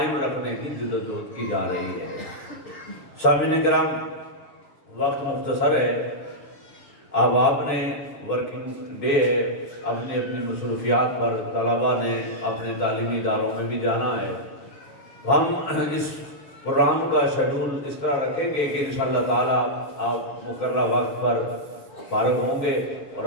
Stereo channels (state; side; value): late; right; 6.4 ms